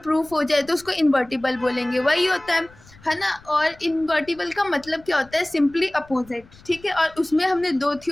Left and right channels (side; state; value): left; noise; rumble, 25 dB below the sound